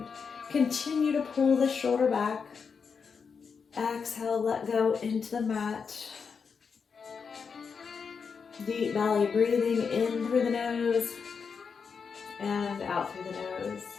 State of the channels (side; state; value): right; quieter; 5.8 dB